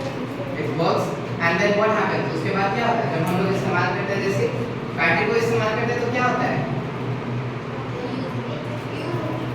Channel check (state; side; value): identical; both; correlation 1.00